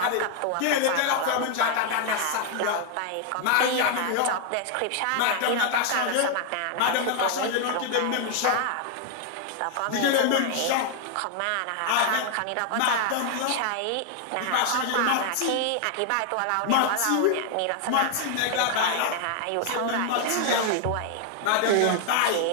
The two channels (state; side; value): different; both; correlation 0.00